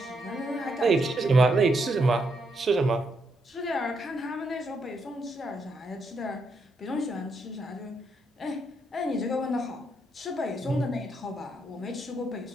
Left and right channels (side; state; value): both; normal; correlation 0.78